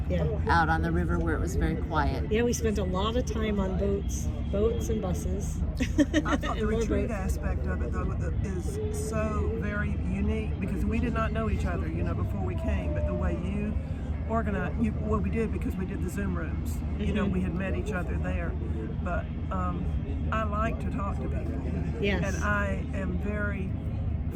out on the river where it was very quiet. Yeah, we spent a lot of time on boats and buses. I thought the retreat aspect of it, though, is so very unique, because we did not know each other, before we came, but the way you organized, we did, because we did the Zoom rooms. We had met each other there. But I like to talk to people. Yes. And I am very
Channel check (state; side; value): identical; both; correlation 1.00